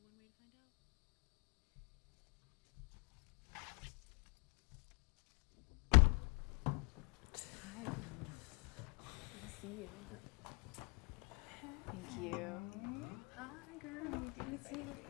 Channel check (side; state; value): right; quieter; 33.5 dB